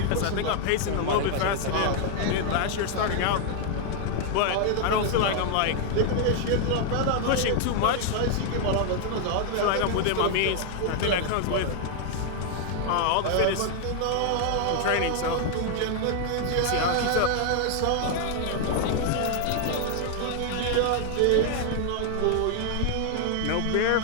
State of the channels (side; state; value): both; different; correlation 0.00